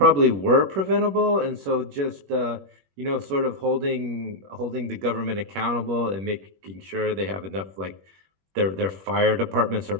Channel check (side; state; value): left; late; 21 ms